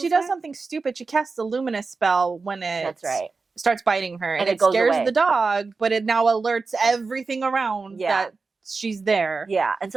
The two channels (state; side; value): quieter; left; 4.3 dB